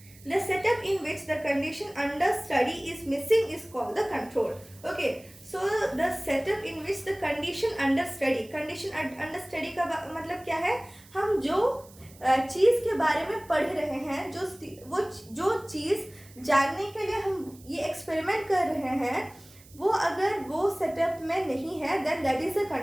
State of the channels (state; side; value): noise; right; hiss, 24 dB below the sound